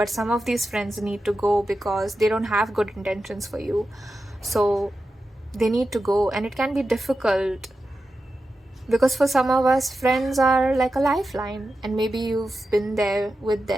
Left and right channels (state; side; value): normal; both; correlation 0.91